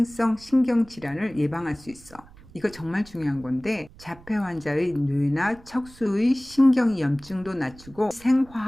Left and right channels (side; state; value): right; noise; rumble, 22 dB below the sound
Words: 신경 질환을 예방할 수 있어. 이거 정말 중요한 건데, 자폐 환자의 뇌나 척수의 신경염증도 낮추고